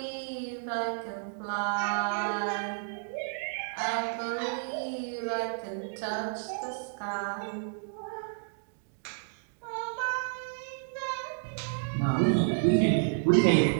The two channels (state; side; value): silent; left; digital silence